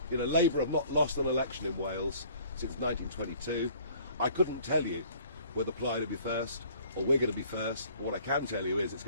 Labour have not lost an election in Wales since 1922. I couldn't tell you whether Plaid will be first or we're going to be first. What I can tell you is it's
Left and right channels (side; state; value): both; inverted; correlation -0.54